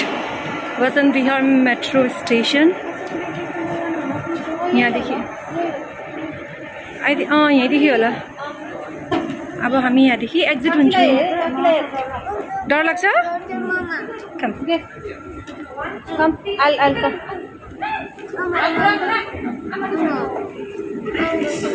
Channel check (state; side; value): identical; both; correlation 1.00